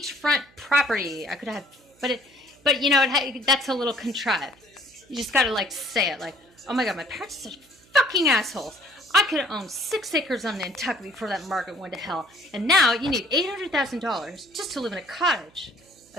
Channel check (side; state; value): right; noise; hum, 30 dB below the sound